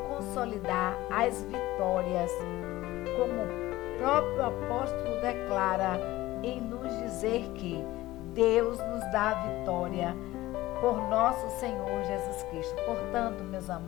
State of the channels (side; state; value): right; quieter; 17.3 dB